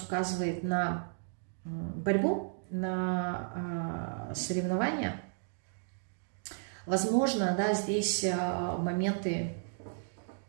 указывает на борьбу, на соревнования. Возможно, да, здесь моменты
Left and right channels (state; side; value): silent; left; digital silence